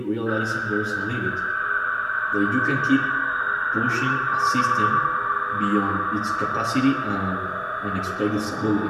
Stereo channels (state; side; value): identical; both; correlation 1.00